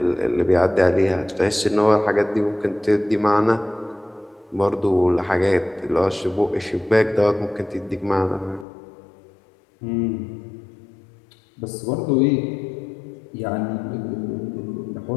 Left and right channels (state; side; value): drops out; right; at 8.7 s